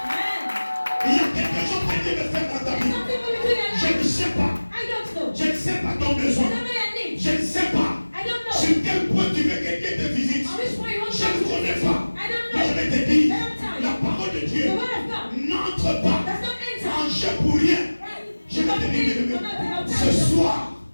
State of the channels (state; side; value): inverted; both; correlation -1.00